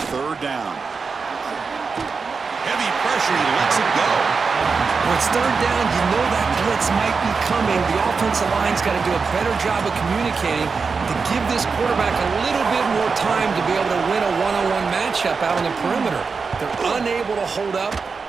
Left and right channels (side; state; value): left; quieter; 5.0 dB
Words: third down. Heavy pressure. He lets it go. When it's third down, you know that blitz might be coming. The offensive line's got to do a better job of communicating to give this quarterback a little bit more time to be able to win a one-on-one matchup out on the perimeter. They're unable to hold up,